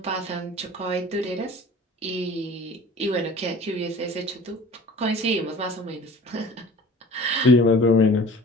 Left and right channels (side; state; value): both; normal; correlation 0.44